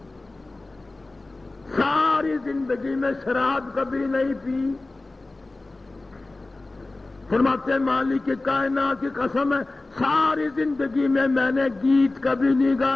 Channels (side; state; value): right; quieter; 3.1 dB